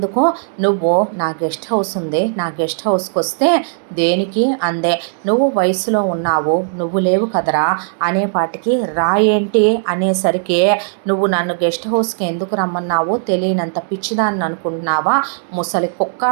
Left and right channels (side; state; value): left; silent; digital silence